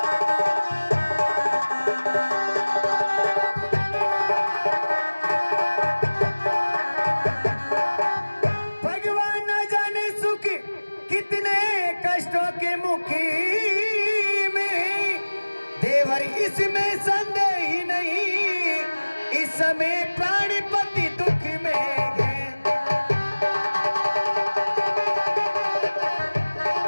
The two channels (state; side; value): inverted; both; correlation -1.00